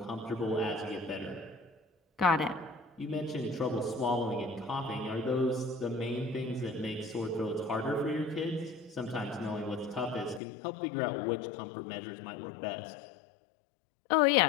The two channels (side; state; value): right; drops out; at 10.4 s